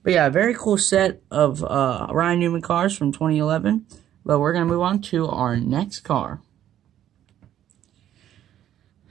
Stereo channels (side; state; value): left; quieter; 11.4 dB